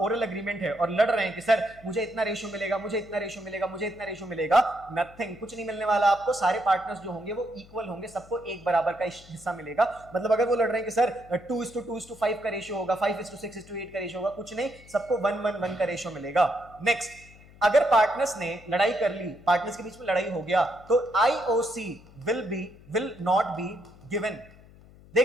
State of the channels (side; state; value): left; noise; hum, 23 dB below the sound